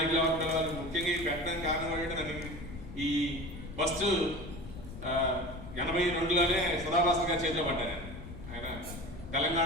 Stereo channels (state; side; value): noise; left; rumble, 12 dB below the sound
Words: ఎవరు పిలవాలి. ముఖ్యంగా ఈ పెట్టడానికి కారణం ఏంటంటే నన్ను ఈ ఫస్ట్ 82లోనే సదాభాస్కర్ గారు చేర్చబడ్డారు. ఆయన